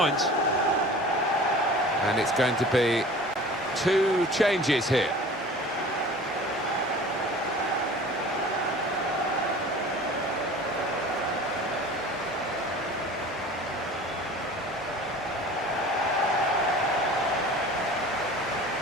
And it's going to be 2 changes here.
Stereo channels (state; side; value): normal; both; correlation 0.42